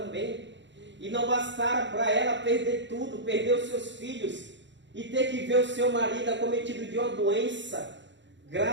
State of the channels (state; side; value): late; left; 0.53 ms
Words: E não bastara para ela perder tudo, perder os seus filhos e ter que ver o seu marido acometido de uma doença